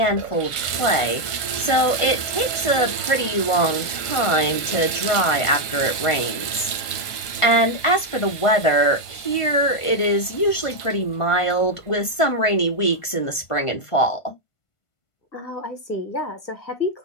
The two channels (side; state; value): right; late; 1.5 ms